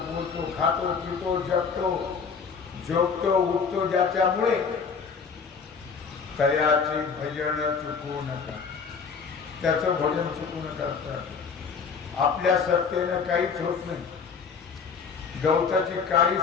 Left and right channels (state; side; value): quieter; right; 5.7 dB